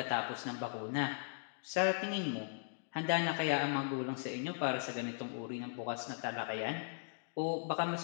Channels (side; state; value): right; silent; digital silence